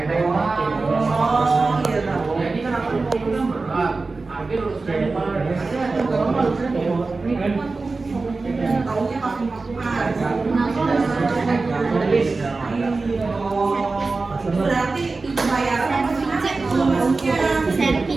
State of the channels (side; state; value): left; quieter; 3.8 dB